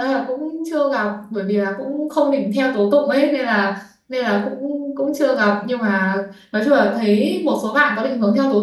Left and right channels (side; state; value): both; identical; correlation 1.00